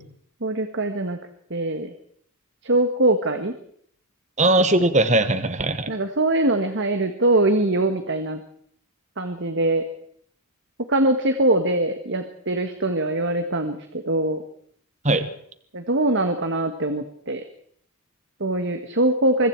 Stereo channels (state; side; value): normal; both; correlation -0.08